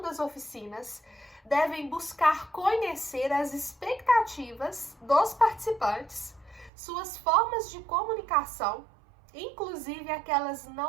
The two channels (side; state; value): left; drops out; at 6.7 s